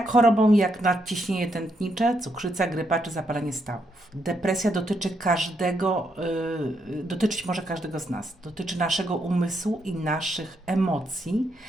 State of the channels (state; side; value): normal; both; correlation 0.78